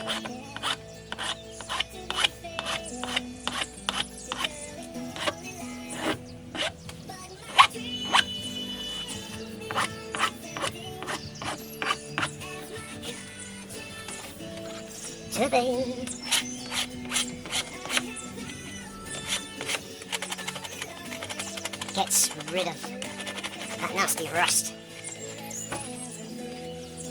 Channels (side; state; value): both; identical; correlation 1.00